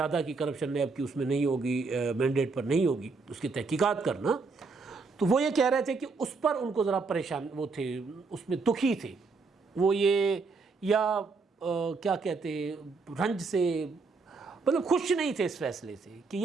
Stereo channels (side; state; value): left; quieter; 4.3 dB